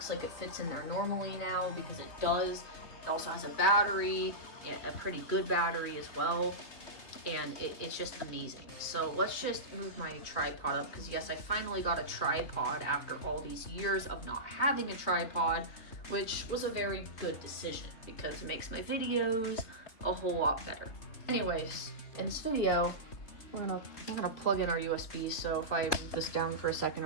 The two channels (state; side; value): late; right; 3.1 ms